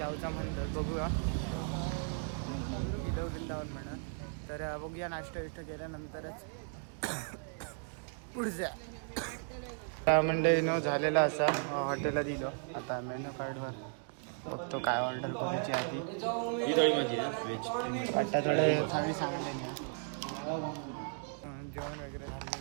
म्हणतात. बघूया वृंदावन म्हणा. तर बघूया नाश्ता विष्टा केल्यानंतरच पुढच्या मंडळी न झालेला असा हॉटेलला दिलो. आता मेनू कार्डवर बघतो काय ऑर्डर करायची आधी. ही थोडी माझी ना व्हेज. वाटतं थोडे थाळी सांगायला नाही. जेवण वगैरे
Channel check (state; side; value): silent; left; 54 dB below the other